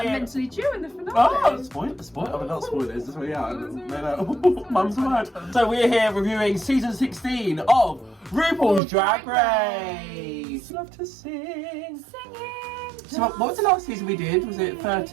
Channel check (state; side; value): drops out; left; at 8.8 s